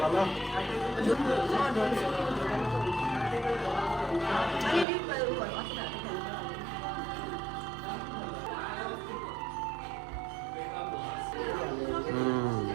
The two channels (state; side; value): drops out; left; at 4.9 s